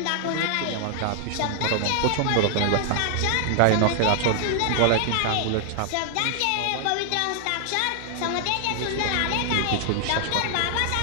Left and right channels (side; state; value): both; different; correlation 0.00